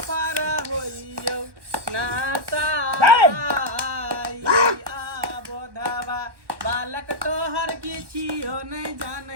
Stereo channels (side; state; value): left; late; 1.2 ms